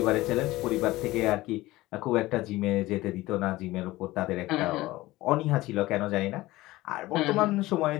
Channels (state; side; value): quieter; right; 18.4 dB